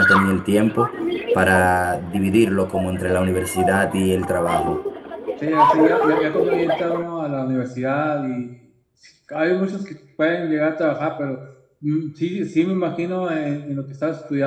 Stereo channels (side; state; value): both; identical; correlation 1.00